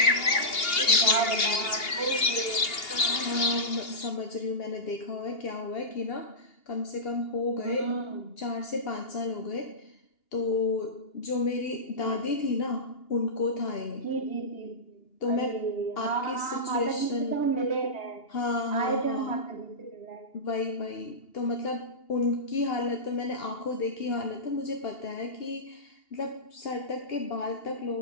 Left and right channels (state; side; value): late; right; 2.8 ms